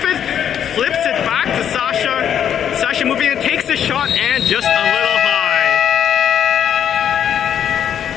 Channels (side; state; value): right; quieter; 9.1 dB